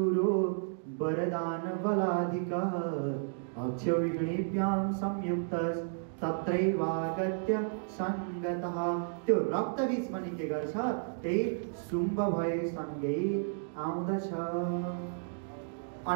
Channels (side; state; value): left; silent; digital silence